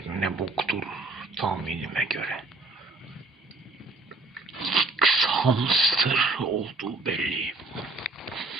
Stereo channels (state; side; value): quieter; left; 3.2 dB